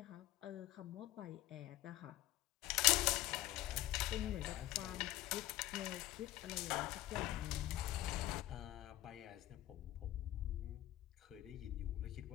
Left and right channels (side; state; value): right; quieter; 15.5 dB